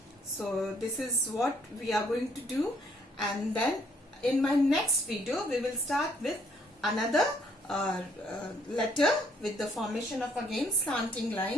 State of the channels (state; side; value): normal; both; correlation 0.66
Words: So this is what we are going to do, and then in my next video we will start with another letter with the formation of again slanting